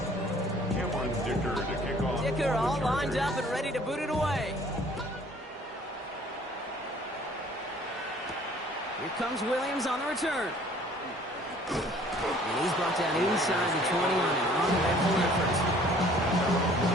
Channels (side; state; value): both; normal; correlation 0.55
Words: Cameron Dicker to kick off. Dicker all lined up and ready to boot it away. Here comes Williams on the return. And he's brought down inside the 20 on an uneventful effort.